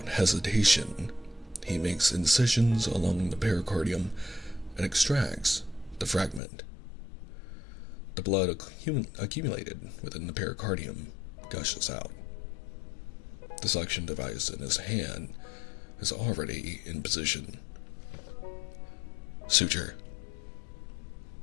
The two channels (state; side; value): drops out; right; at 6.4 s